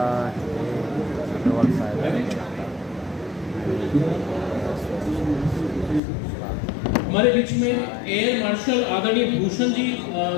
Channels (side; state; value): right; drops out; at 6.0 s